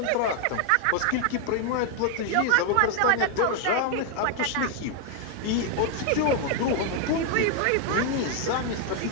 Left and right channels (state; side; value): different; both; correlation 0.01